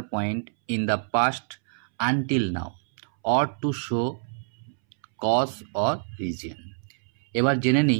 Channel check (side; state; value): left; silent; 61 dB below the other